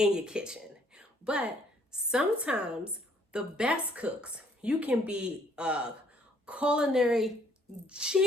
your kitchen. But sometimes the best cooks, you can be a culinary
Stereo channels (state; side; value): normal; both; correlation 0.64